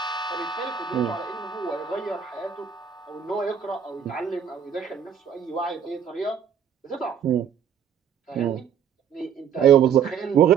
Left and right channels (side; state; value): left; quieter; 7.9 dB